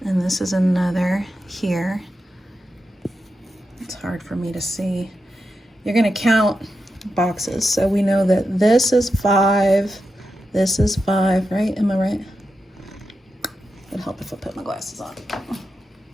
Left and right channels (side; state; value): both; normal; correlation 0.89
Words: and this is another here, it's hard for me to see. You're gonna count boxes. So we know that this is 5, this is 5, right? Am I right? It'd help if I put my glasses on.